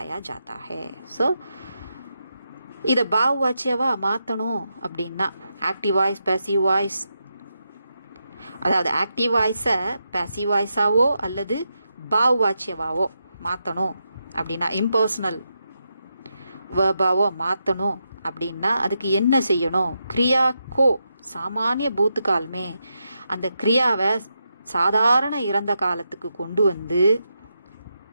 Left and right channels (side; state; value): both; inverted; correlation -0.85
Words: जाता है. ஸோ இதை பாவவாச்சியவா மாற்றணும் அப்படின்னா ஆக்டிவ் வாய்ஸ், பேசிவ் வாய்ஸ், அதாவது ஆக்டிவ் வாய்ஸை பேசிவ் வாய்ஸாவோ அல்லது பாவவாச்சியவாவோ மாற்றணும் அப்படின்னா, இம்பர்சனல் வேர்பாவோ மாற்றணும் அப்படின்னா அதுக்கு என்ன செய்யணும், கிரியா கோ சாமானிய பூத்துக்கால்மே, அந்த கிரியாவை சாதாரண இறந்த காலத்துக்கு கொண்டு வந்து